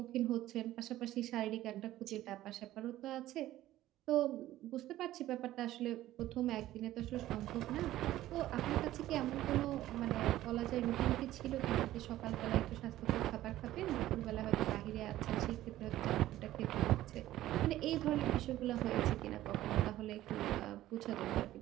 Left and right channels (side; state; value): left; quieter; 14.6 dB